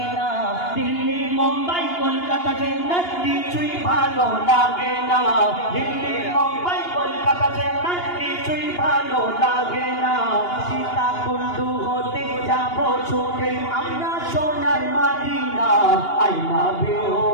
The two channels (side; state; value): right; late; 2.8 ms